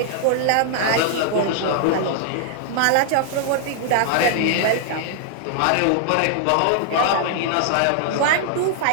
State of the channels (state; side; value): different; both; correlation -0.01